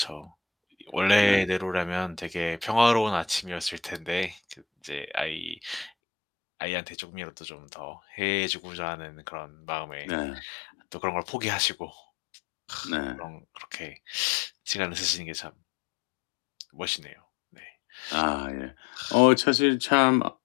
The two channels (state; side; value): drops out; right; at 5.9 s